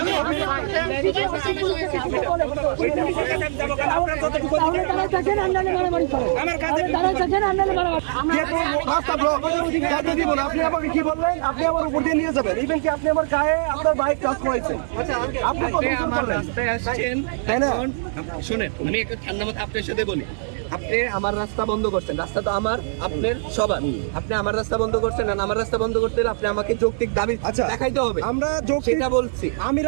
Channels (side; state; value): left; silent; digital silence